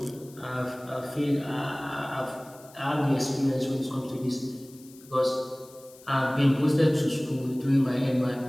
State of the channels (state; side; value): noise; left; hiss, 23 dB below the sound